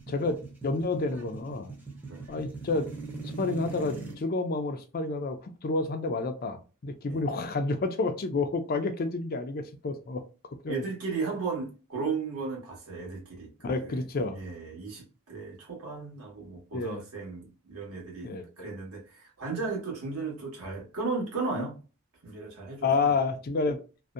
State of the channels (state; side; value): normal; both; correlation 0.17